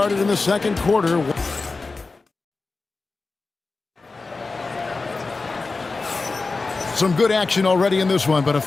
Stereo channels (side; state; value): right; quieter; 3.9 dB